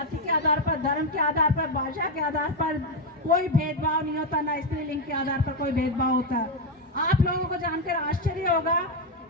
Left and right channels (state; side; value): normal; both; correlation 0.06